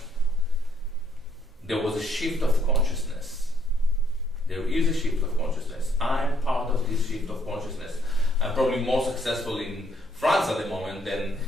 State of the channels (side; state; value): both; normal; correlation 0.68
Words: There was a shift of consciousness. There is a shift of consciousness. I'm part of this shift of consciousness. I'm probably more successful in France at the moment than